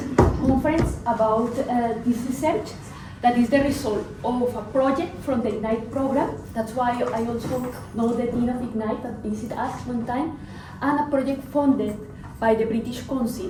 conference about this research that is the result of a project from the IGNITE program. That's why I also know the Dean of IGNITE that visited us one time, and a project funded by the British Council.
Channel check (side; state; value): both; identical; correlation 1.00